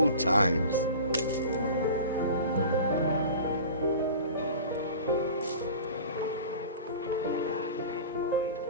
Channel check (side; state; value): both; inverted; correlation -0.38